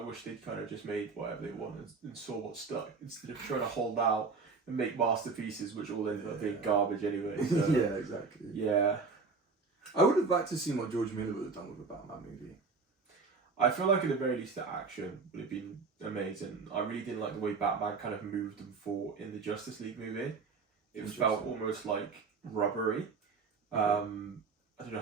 they'd kind of just made whatever they wanted and saw what stuck instead of trying to hold out and make masterpieces, which all ended up being garbage anyway. So, yeah, exactly. Yeah. I would have liked to see what George Miller would have done with a Batman movie. I feel like at the very least the action would have been amazing. I really didn't like the way Batman kind of moved and fought in the Justice League movie. It felt almost like rubbery. I don't know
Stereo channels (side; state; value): left; quieter; 4.6 dB